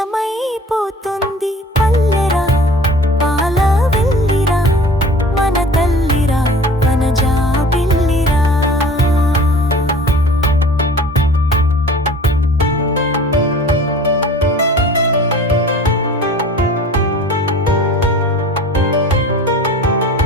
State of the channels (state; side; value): normal; both; correlation 0.44